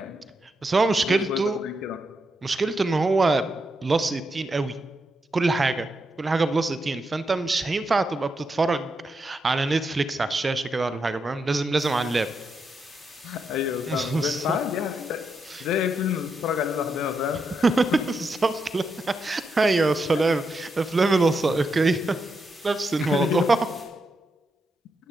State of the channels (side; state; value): both; normal; correlation 0.83